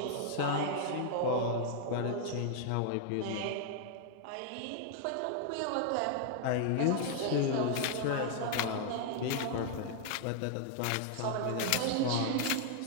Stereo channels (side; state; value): both; different; correlation 0.00